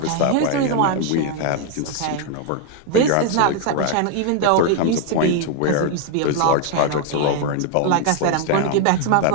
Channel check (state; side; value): different; both; correlation 0.00